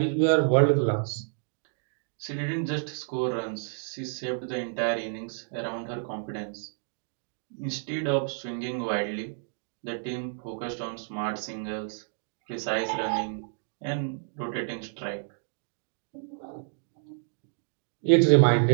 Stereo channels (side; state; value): left; silent; digital silence